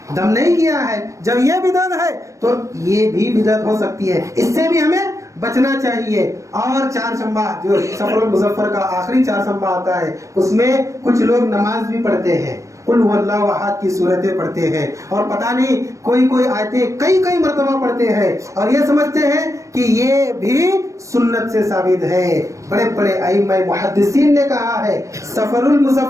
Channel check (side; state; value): left; late; 0.15 ms